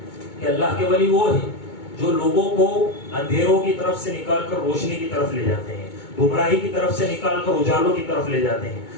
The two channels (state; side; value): late; right; 2.2 ms